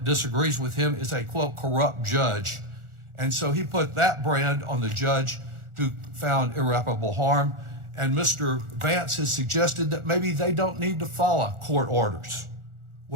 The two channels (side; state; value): left; late; 1.4 ms